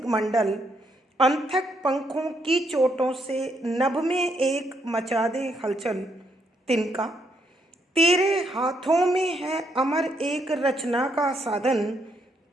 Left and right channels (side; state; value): both; normal; correlation 0.74